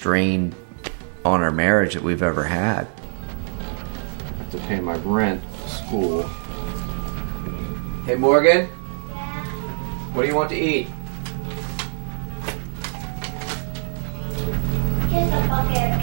on our marriage that we've ever had. To pay my rent, school. Hey Morgan? Yeah. What do you want to eat? Here's a bucket of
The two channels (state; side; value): silent; left; digital silence